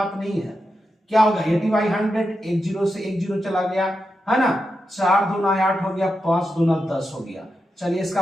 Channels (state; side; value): normal; both; correlation 0.87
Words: नहीं है। क्या होगा? 80/100, एक जीरो से एक जीरो चला गया, है ना। 4 दूना 8 हो गया, 5 दूना 10 हो गया। चलिए